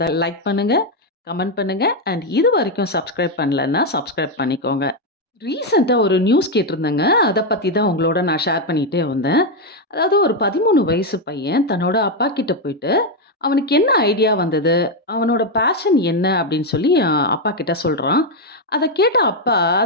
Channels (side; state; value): both; normal; correlation 0.04